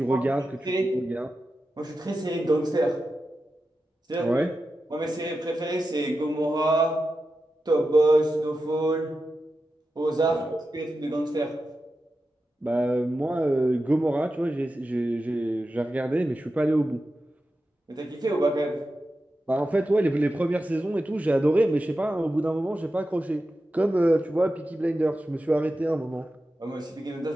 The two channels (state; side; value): normal; both; correlation 0.91